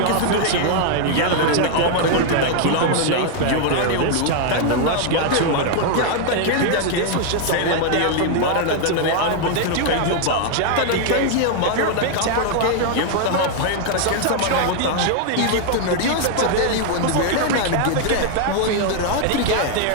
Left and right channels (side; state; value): both; different; correlation 0.00